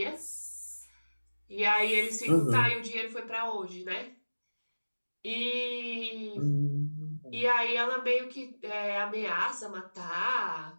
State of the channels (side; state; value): both; inverted; correlation -1.00